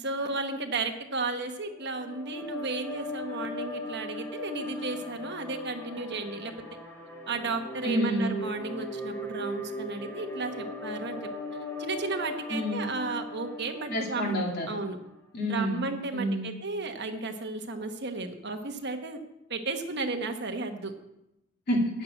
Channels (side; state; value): both; normal; correlation 0.22